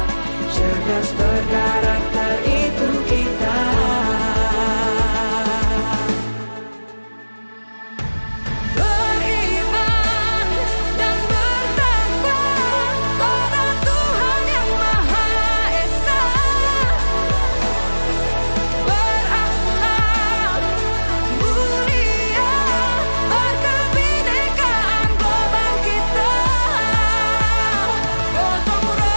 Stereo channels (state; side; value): inverted; both; correlation -1.00